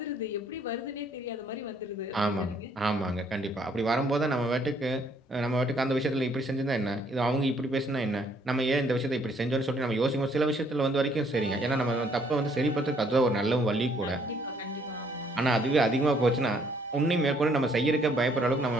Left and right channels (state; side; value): normal; both; correlation 0.65